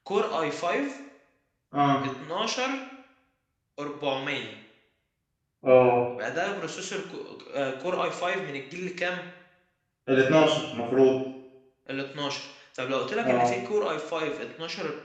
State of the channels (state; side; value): identical; both; correlation 1.00